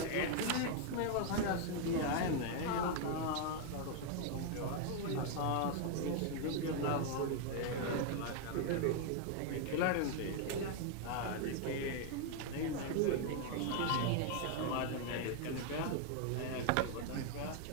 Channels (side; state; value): both; different; correlation 0.00